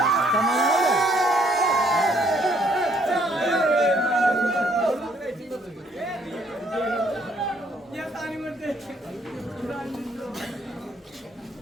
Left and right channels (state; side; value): normal; both; correlation 0.66